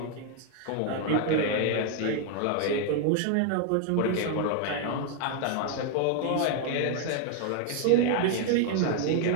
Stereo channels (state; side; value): different; both; correlation 0.00